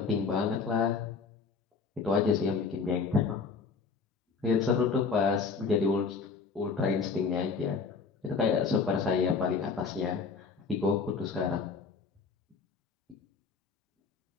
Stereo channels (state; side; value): quieter; right; 5.0 dB